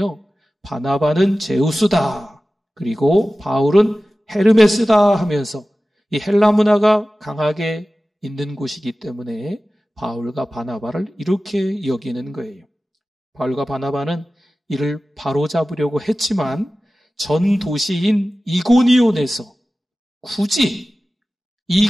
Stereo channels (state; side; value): normal; both; correlation 0.96